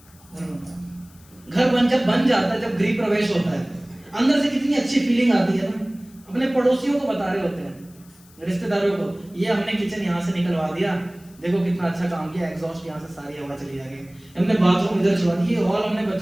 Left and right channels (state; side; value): noise; left; hiss, 27 dB below the sound